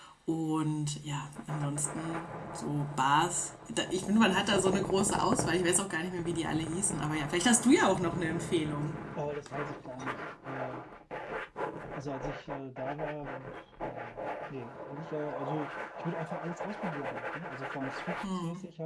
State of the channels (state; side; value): identical; both; correlation 1.00